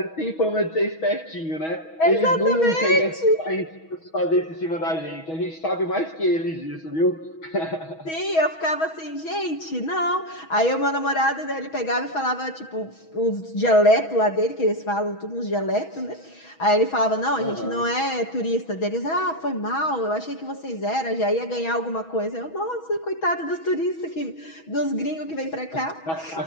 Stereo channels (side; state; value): right; late; 6.2 ms